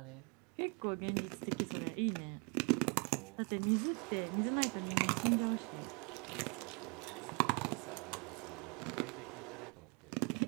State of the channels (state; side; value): quieter; left; 34.4 dB